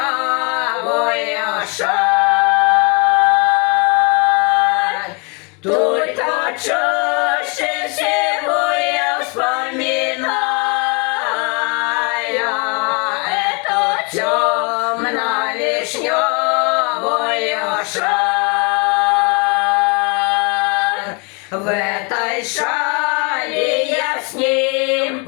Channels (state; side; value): quieter; right; 32.9 dB